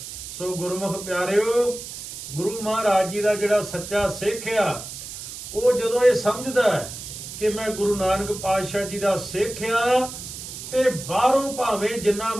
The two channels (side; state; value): right; noise; hiss, 10 dB below the sound